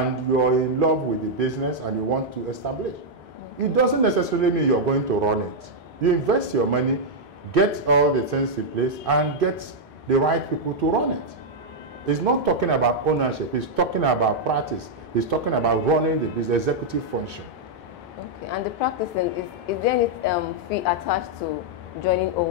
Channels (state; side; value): normal; both; correlation -0.04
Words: you're in love with the business and you want to establish, it doesn't necessarily mean you're going to run it. You invest your money, get all the things in place, and get the right people to run it. It's not talking about ownership, it's talking about practice. It's talking about running the business, executive function. Okay, and the practicing, is there any fee attached to joining